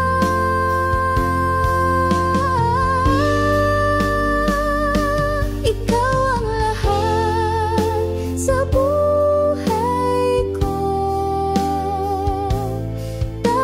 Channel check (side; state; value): both; identical; correlation 1.00